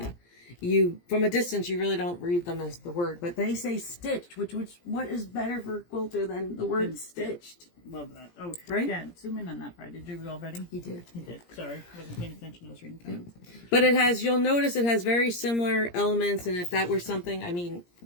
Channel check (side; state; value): right; late; 17 ms